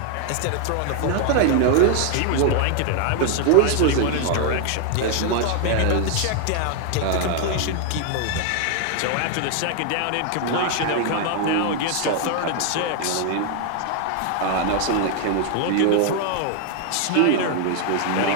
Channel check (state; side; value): different; both; correlation 0.00